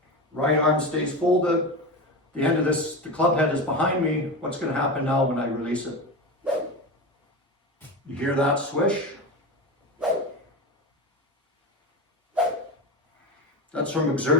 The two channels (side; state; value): both; normal; correlation 0.22